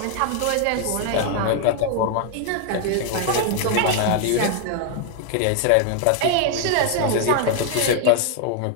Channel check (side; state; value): both; different; correlation 0.00